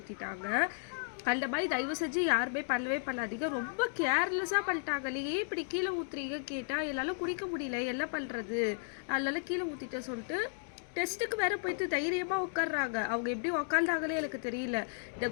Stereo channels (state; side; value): silent; right; digital silence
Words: அந்த மாதிரி தயவு செஞ்சு யாருமே பண்ணவே பண்ணாதீங்க. ரொம்ப கேர்லெஸ்ஸாக பண்ணிட்டாங்க. ஏன் இப்படி கீழே ஊற்றுறீங்க கேட்டால் என்னால் குடிக்க முடியல, என்ன பண்ணுறது, அதனால கீழே ஊற்றிட்டேன் சொல்லிட்டு டெஸ்ட்டுக்கு வேறு போயிட்டு தைரியமாக உட்காடுறாங்க. அவங்க எப்படி உக்காந்தாங்களே எனக்கு தெரியல. இந்த